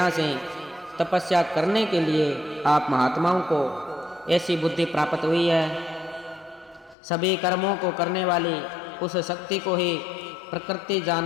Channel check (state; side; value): drops out; right; at 7.0 s